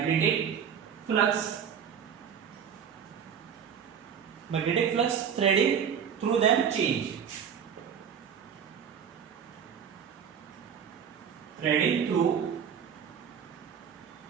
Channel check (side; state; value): left; quieter; 7.7 dB